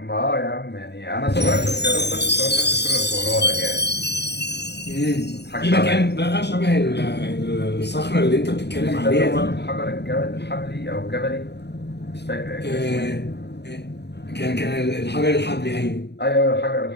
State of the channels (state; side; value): late; right; 0.49 ms